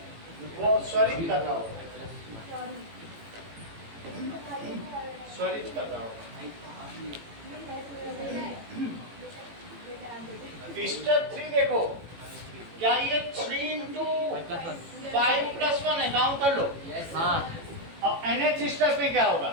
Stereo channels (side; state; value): left; late; 18 ms